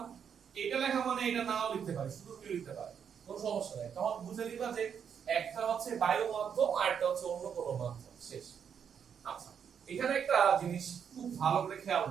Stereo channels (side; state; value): left; quieter; 7.6 dB